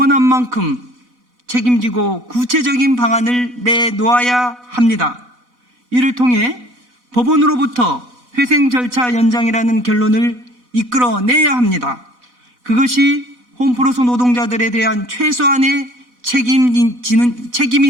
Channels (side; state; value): left; late; 4.1 ms